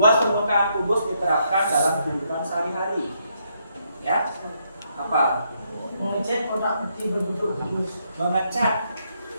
permukaan kubus diterapkan dalam kehidupan sehari-hari. Ya, apa? Mengecat kotak peti berbentuk kubus. Mengecat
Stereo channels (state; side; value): inverted; both; correlation -0.76